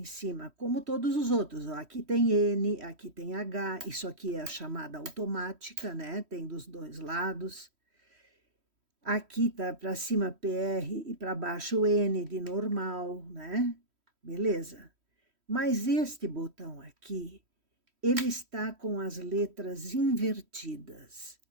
cima, como todos os outros. Ó, aqui tem N, aqui tem H, isso aqui é a chamada automática, né? Tem dos 2 lados. Aqui tá para cima PR e para baixo N de normal, né? Beleza? Mas este botão aqui, ele está com as letras invertidas,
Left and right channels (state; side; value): late; left; 3.1 ms